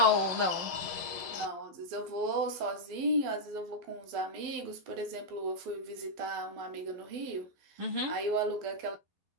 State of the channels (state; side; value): late; left; 12 ms